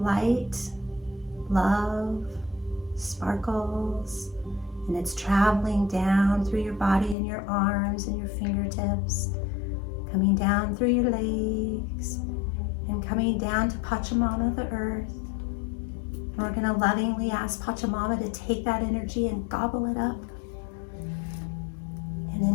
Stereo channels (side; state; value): right; drops out; at 7.2 s